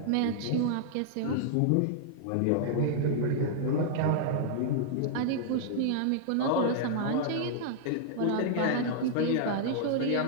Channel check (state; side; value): different; both; correlation -0.01